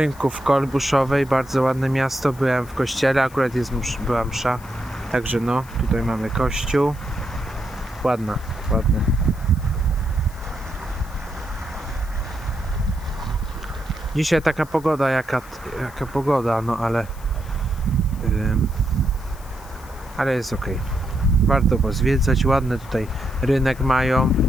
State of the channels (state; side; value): noise; left; hiss, 23 dB below the sound